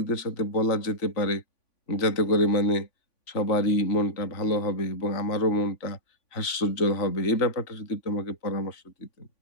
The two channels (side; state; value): right; late; 3.5 ms